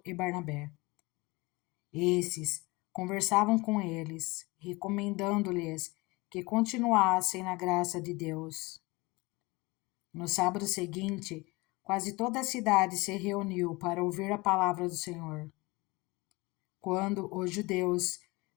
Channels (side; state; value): right; quieter; 23.6 dB